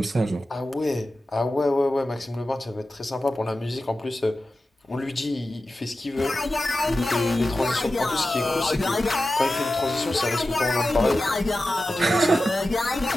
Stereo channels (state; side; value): normal; both; correlation 0.94